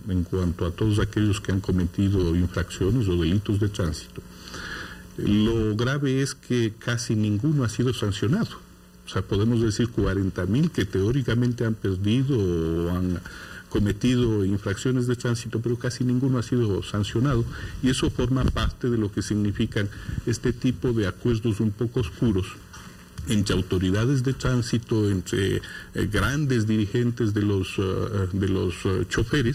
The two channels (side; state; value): both; identical; correlation 1.00